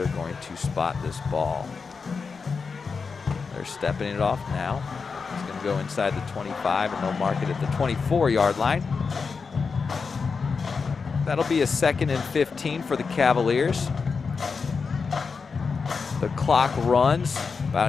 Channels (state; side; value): quieter; right; 5.1 dB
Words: going to spot this ball. They're stepping it off now. It's going to go inside the 25, and they'll mark it at the 24-yard line. That'll be a 2nd and 15 for the Cavaliers. The clock runs,